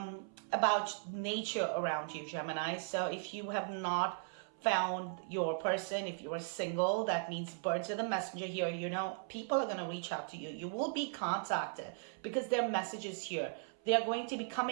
nature around you, Gemini. So if you have not found your person, if you are single, that means birds are the messenger here. People are going to reach out to you. You will be contacted because their messages here. They are going to be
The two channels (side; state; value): left; silent; 53 dB below the other